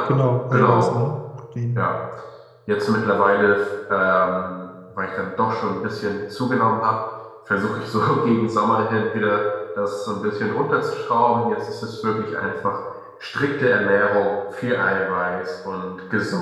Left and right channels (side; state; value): both; identical; correlation 1.00